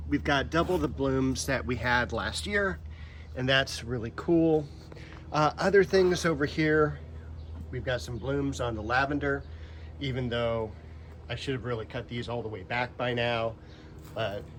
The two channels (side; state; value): both; identical; correlation 1.00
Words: we've got double the blooms that we had last year, and that's really cool. Other things over here, we've got some blooms on the lavender, even though I should have really cut these all the way back by now, but